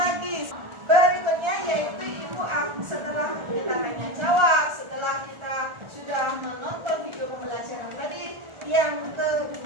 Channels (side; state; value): left; late; 1.4 ms